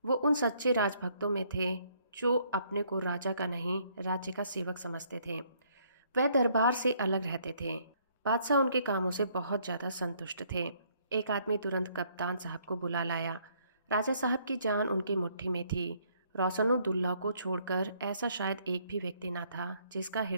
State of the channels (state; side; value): inverted; both; correlation -0.66